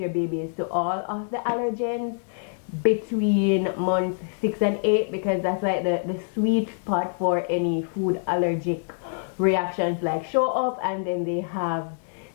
babies to all of the allergens between months 6 and 8, because that's like the sweet spot for any food allergic reactions like show up, and then they have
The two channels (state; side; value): silent; right; digital silence